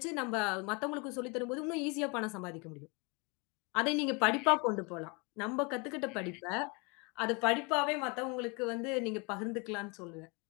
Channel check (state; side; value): quieter; right; 30.7 dB